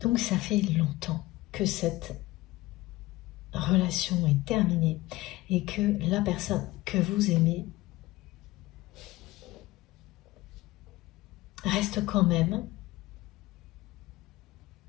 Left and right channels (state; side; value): quieter; right; 19.0 dB